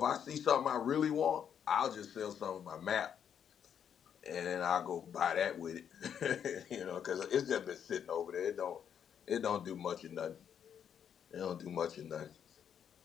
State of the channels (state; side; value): quieter; right; 8.4 dB